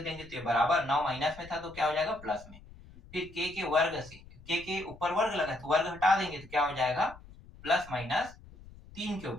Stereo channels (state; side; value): noise; left; rumble, 20 dB below the sound